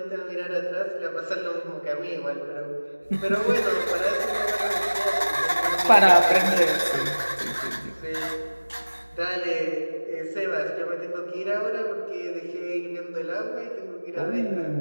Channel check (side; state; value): both; inverted; correlation -1.00